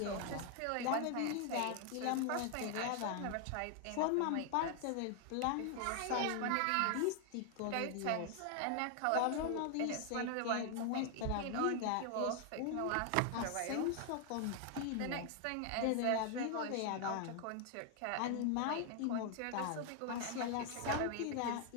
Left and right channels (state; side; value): different; both; correlation 0.00